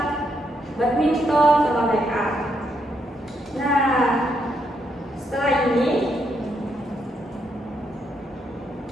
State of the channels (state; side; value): normal; both; correlation 0.77